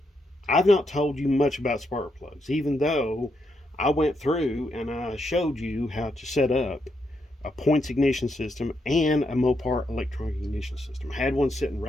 I've not told you much about spark plugs, even though I went through and I showed you how to set up a points ignition system and a Mopar electronic ignition system. I had one sitting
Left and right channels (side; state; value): both; normal; correlation 0.80